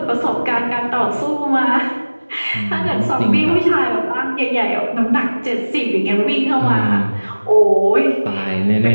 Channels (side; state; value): both; inverted; correlation -1.00